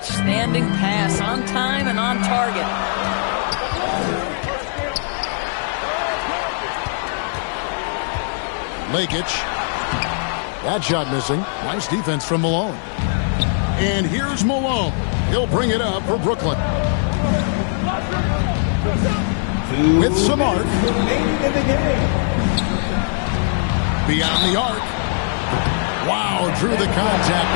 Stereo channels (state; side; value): silent; right; 55 dB below the other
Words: pass, on time and on target. Lakic. That shot missing. Nice defense from Malone. And here's Malone. He'll bring it up for Brooklyn. With some arc. Beyond the arc. Wow, drew the contact,